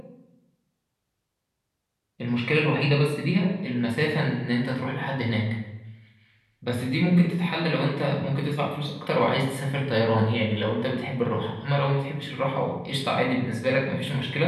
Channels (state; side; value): identical; both; correlation 1.00